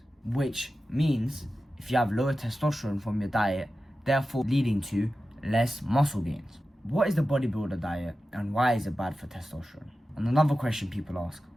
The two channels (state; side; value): normal; both; correlation 0.93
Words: which means if you have lower testosterone from your diet, therefore leading to less muscle gains. What is the bodybuilder diet and why is it bad for testosterone? And another question people ask,